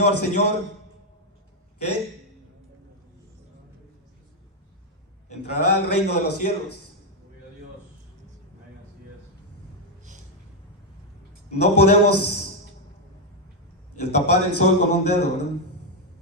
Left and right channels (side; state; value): both; normal; correlation 0.03